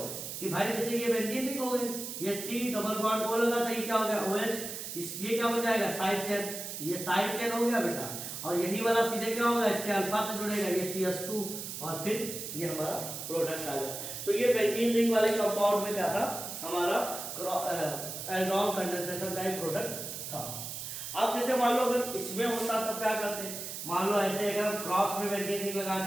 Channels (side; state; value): right; noise; hiss, 7 dB below the sound